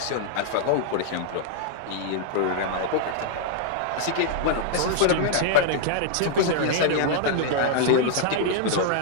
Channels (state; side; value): different; both; correlation -0.01